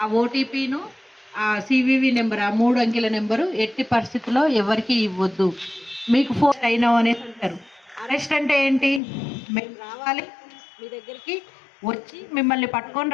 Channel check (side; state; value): right; drops out; at 9.0 s